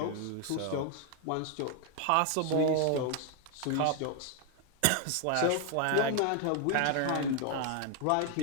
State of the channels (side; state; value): both; different; correlation 0.00